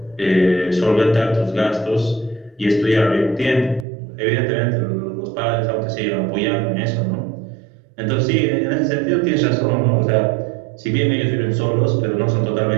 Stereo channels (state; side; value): drops out; left; at 3.9 s